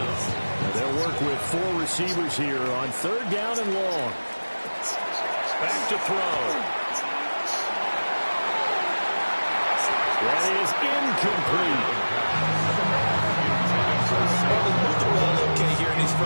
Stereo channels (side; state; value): both; inverted; correlation -1.00